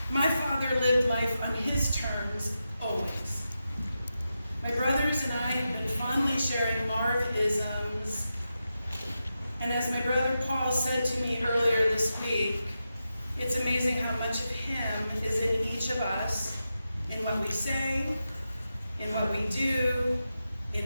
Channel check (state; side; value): inverted; both; correlation -0.89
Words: My father lived life on his terms, always. My brothers and I have been fondly sharing Marv-isms, and as my brother Paul said to me earlier this week, it's amazing how much of him is in each of us, in what we say, in what we do, in